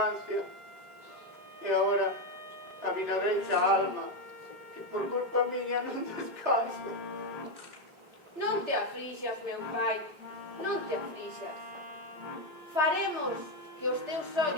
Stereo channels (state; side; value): late; left; 3.4 ms